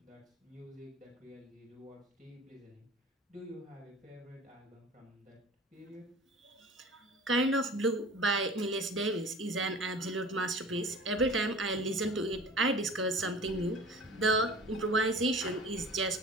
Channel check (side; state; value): both; normal; correlation 0.42